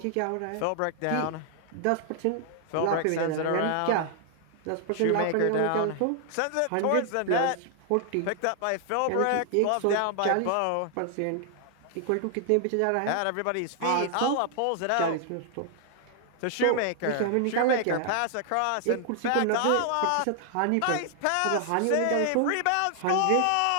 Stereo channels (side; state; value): both; different; correlation 0.00